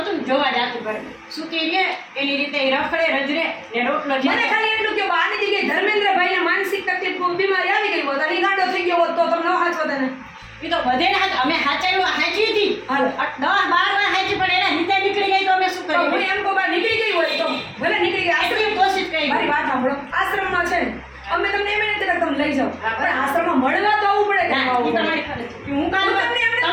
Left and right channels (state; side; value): identical; both; correlation 1.00